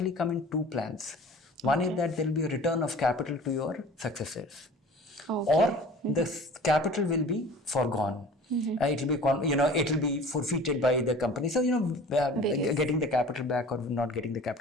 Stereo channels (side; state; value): both; normal; correlation 0.44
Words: come in 2 plans. One is that there will be a return of capital to your successors, or the capital will be forgone. It will be forfeited by the company. So getting the capital back or not getting the